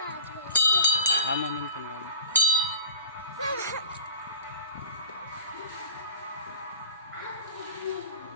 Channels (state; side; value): inverted; both; correlation -0.38